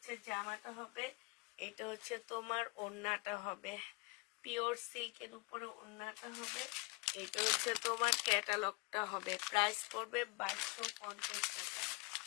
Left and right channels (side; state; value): right; quieter; 26.3 dB